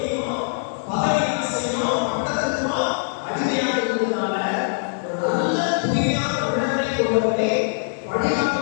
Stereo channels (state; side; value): silent; right; digital silence